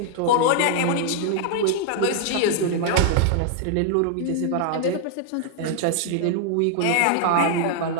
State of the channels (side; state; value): both; different; correlation 0.00